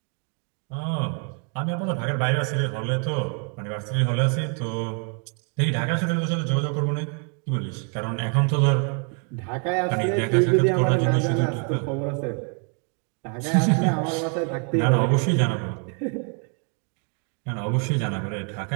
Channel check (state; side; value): quieter; left; 39.5 dB